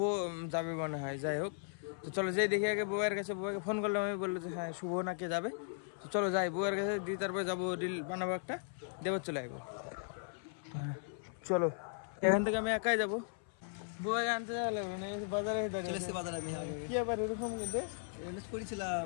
যাবে মনে হয়। যাই হোক, তো চলো যাই দেখি আগে বউয়ের কাছে। বউকে ফোন করলাম, আমি বললো যে হ্যাঁ শুভ না কে যাবে। তো চলো যাই বউয়ের কাছে দিই, তারপরে যাবো রিল বানাবো একটা, দেবো চলে আসবো। চলো, এখান থেকে আমি একাই যাবো, বউকে আনতে যাওয়া লাগবে না, বাজারে কি আবার এরকম ড্রেস করেছিলাম,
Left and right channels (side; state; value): right; silent; 53 dB below the other